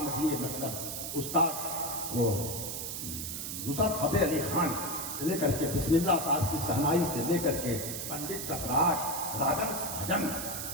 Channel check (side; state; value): right; noise; hiss, 5 dB below the sound